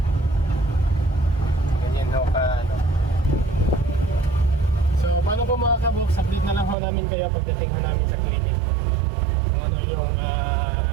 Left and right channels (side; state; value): left; drops out; at 6.8 s